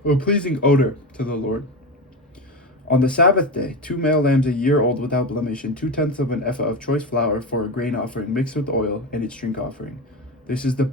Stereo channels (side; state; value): both; normal; correlation 0.21